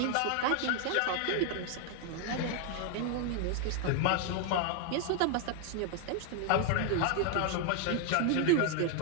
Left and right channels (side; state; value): both; different; correlation 0.00